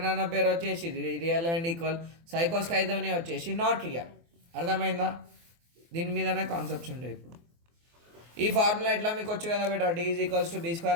అన్న పేరు వచ్చేసి రియల్ అండ్ ఈక్వల్, సైకోస్ ఖైదోని వచ్చేసి నాట్ రియల్. అర్థమైందా? దీని మీదనే కాన్సెప్ట్స్ ఉంటాయి. ఇప్పుడు ఈ ఫార్ములా ఎట్లా మీకు వచ్చు కదా బేటా, D is equals to B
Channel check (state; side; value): late; left; 24 ms